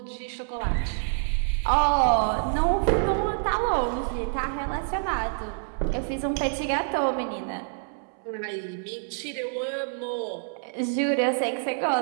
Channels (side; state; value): left; silent; 60 dB below the other